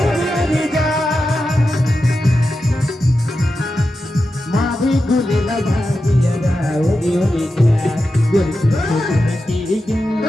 मावी गुले लगा दिया राउडी ओडी का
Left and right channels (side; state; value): both; normal; correlation 0.90